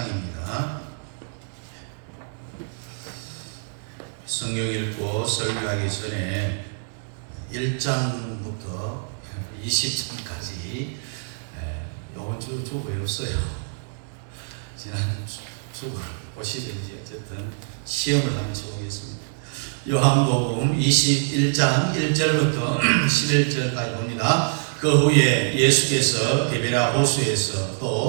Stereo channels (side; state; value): left; silent; digital silence